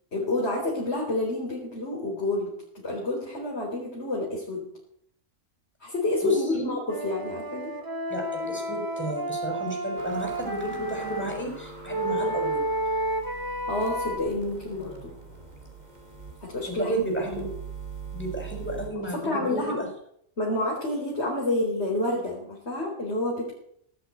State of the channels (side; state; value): both; normal; correlation -0.12